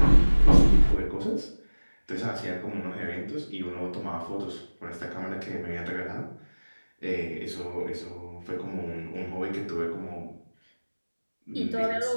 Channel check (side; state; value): both; inverted; correlation -1.00